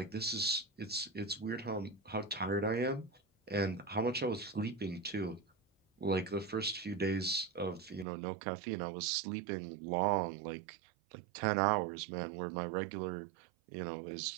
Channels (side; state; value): left; drops out; at 8.1 s